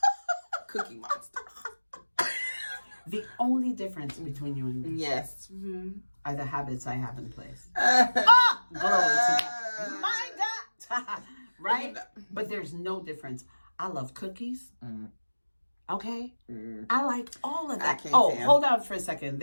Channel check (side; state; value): both; inverted; correlation -1.00